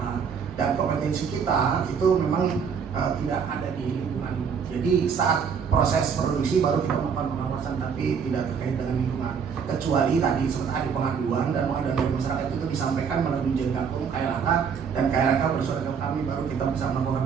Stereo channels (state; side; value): quieter; left; 6.6 dB